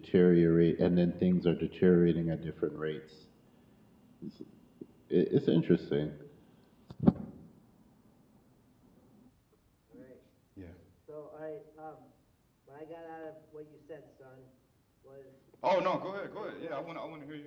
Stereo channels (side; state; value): both; identical; correlation 1.00